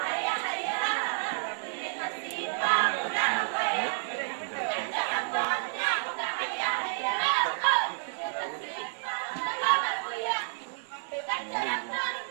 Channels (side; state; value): left; silent; digital silence